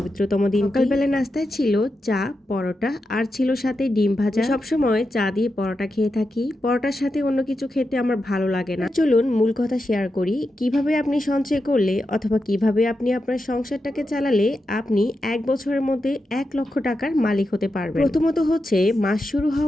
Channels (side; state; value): both; normal; correlation 0.88